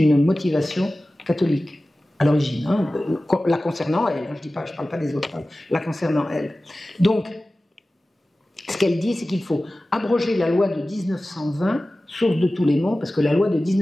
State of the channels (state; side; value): normal; both; correlation 0.96